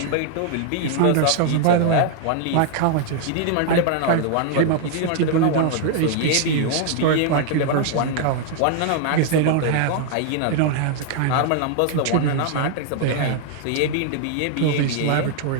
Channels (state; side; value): different; both; correlation 0.00